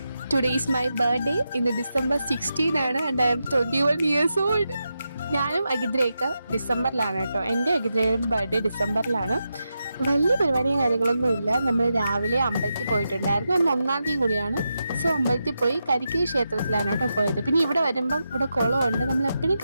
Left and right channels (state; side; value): inverted; both; correlation -0.88